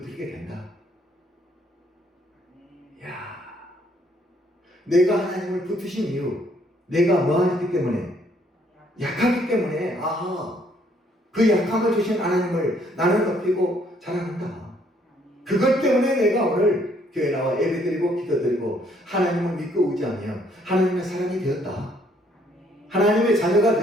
된다. 아멘. 야, 내가 하나님을 붙으신 이유, 내가 뭐하기 때문에? 약하기 때문에. 아하, 그 약함을 주신 하나님을 나는 높이고 자랑한다. 아멘. 그것 때문에 내가 오늘 교회 나와 예배드리고 기도드리고 하나님을 믿고 의지하며 하나님의 사람이 되었다. 아멘. 하나님의 자녀가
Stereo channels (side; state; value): both; normal; correlation 0.66